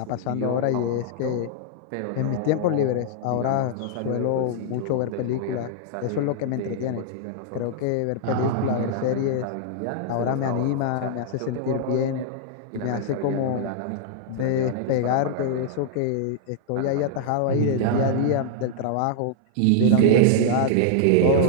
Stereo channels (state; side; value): different; both; correlation -0.01